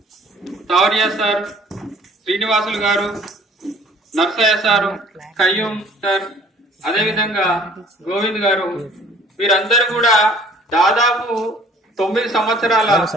తౌరియా సార్, శ్రీనివాసులు గారు, నర్సయ్య సారు, కయ్యూం సార్, అదేవిధంగా గోవింద్ గారు, వీరందరూ కూడా దాదాపు 9 సంవత్సరాల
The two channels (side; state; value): both; normal; correlation 0.53